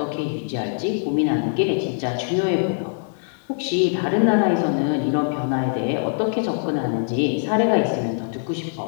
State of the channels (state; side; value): silent; right; 64 dB below the other